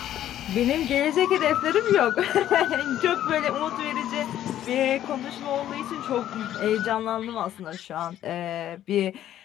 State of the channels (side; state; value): right; quieter; 11.9 dB